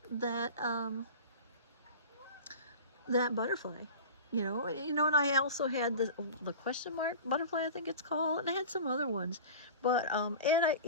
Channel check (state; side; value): inverted; both; correlation -0.35